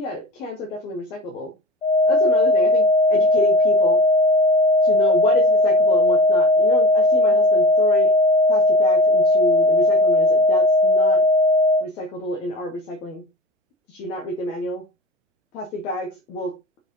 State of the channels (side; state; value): both; normal; correlation 0.33